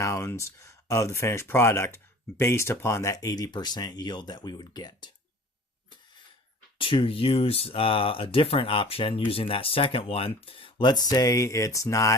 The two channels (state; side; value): normal; both; correlation 0.45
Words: of the finished product based upon that 80% yield that we would get. To use a different option, using that second one, let's say it's